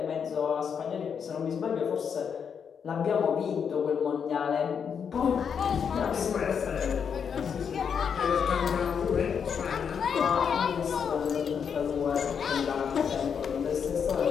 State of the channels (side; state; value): right; quieter; 7.0 dB